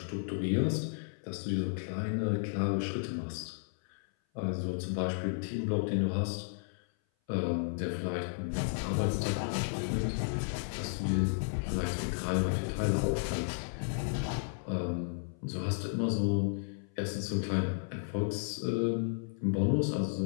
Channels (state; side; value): silent; right; 55 dB below the other